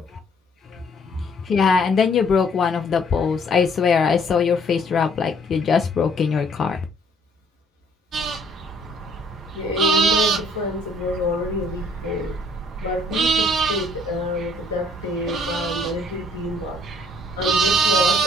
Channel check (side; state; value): both; normal; correlation 0.62